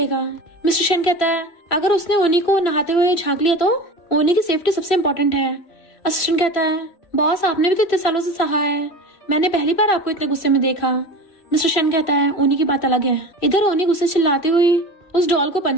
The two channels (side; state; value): right; late; 3.0 ms